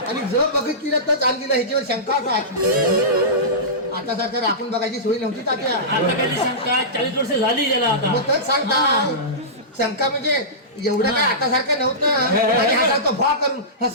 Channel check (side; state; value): both; normal; correlation -0.19